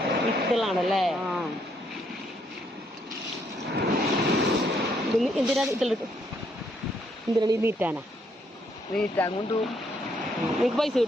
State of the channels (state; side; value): normal; both; correlation 0.72